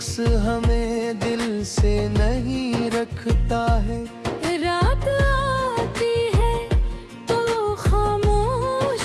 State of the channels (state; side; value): identical; both; correlation 1.00